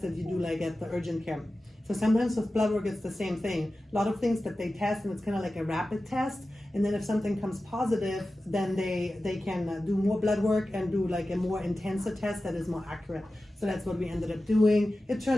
that you do like at the urgent care. So sometimes with blood work, it's the same thing. A lot of things that they test, and it's kind of like a rapid test. And then if something comes positive, then they can do more blood work and do like a more intensive test that is more accurate. So that's what we ended up doing. It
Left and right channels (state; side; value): normal; both; correlation 0.94